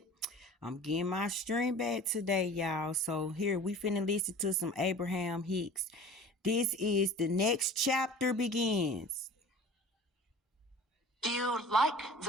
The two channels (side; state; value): both; normal; correlation 0.42